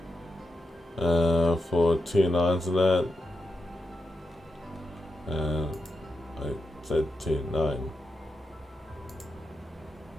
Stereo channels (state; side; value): normal; both; correlation 0.86